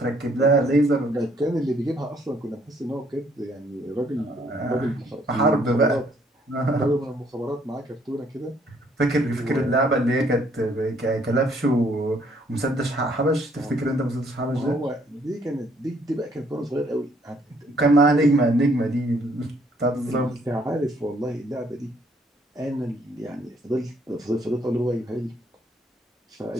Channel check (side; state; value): both; normal; correlation 0.66